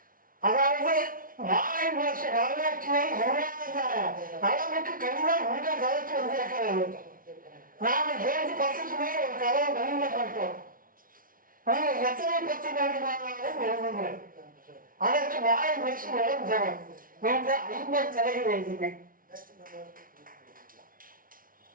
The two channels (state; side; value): late; left; 0.41 ms